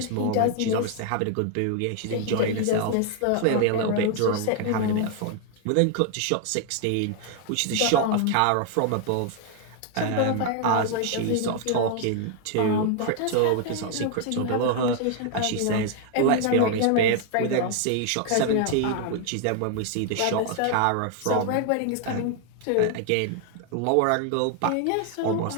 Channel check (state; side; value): different; both; correlation 0.00